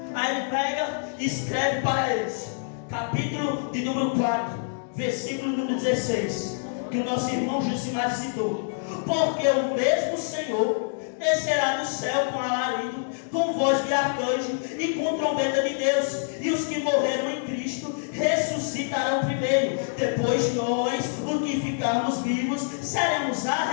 Aí ele pega e escreve para eles, capítulo de número 4, versículo número 16, que o nosso irmão Josimar citou: porque o mesmo Senhor descerá do céu com alarido, com voz de arcanjo e com trombeta de Deus, e os que morreram em Cristo ressuscitarão primeiro. Depois nós, os que ficarmos vivos, seremos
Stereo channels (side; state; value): right; silent; digital silence